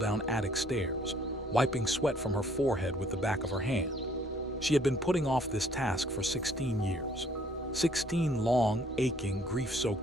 attic stairs, wiping sweat from her forehead with the back of her hand. She had been putting off this task for 16 years. 16 long, aching,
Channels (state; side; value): normal; both; correlation 0.61